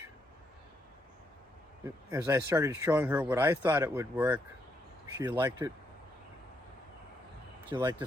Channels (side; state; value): both; normal; correlation 0.76